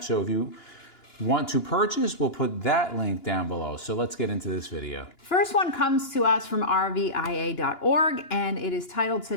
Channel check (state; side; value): late; right; 2.9 ms